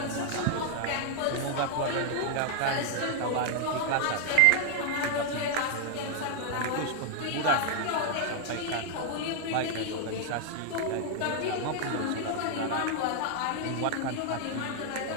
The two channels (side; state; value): both; different; correlation 0.00